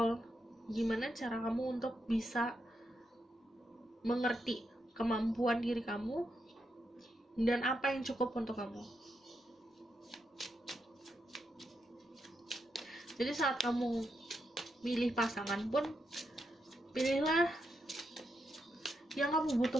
gimana cara kamu untuk bisa mengerti kemampuan diri kamu dan apa yang cukup untuk kamu. Jadi saat kamu milih pasangan pun, pilihlah yang kamu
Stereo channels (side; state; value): both; normal; correlation 0.83